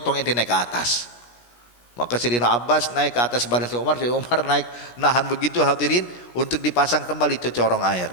ente naik ke atas. Maka Sayyidina Abbas naik ke atas badan Sayyidina Umar naik nahan begitu, hadirin, untuk dipasang kembali itu corong air.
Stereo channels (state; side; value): late; right; 17 ms